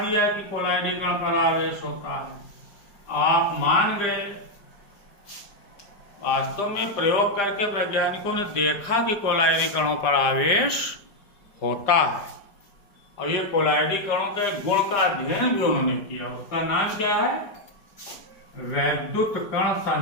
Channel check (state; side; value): late; right; 5.0 ms